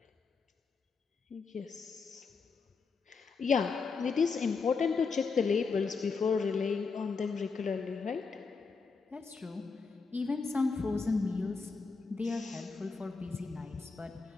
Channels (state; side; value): quieter; right; 4.8 dB